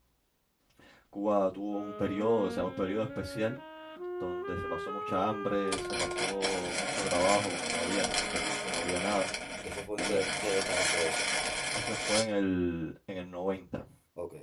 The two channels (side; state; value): both; identical; correlation 1.00